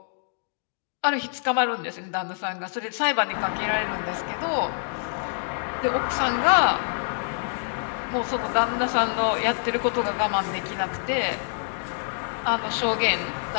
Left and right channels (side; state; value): right; silent; digital silence